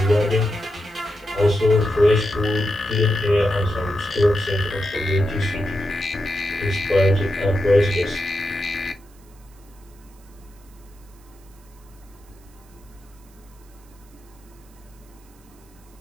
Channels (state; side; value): noise; right; hiss, 29 dB below the sound